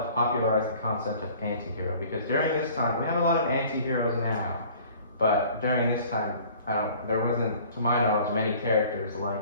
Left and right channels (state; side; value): inverted; both; correlation -0.50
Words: the concept of anti-hero, because during this time, we have a lot of anti-heroes now, but during this time, there wasn't, to my knowledge, many characters